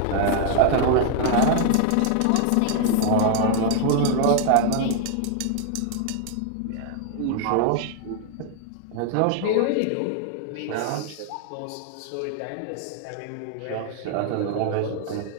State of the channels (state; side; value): different; both; correlation 0.00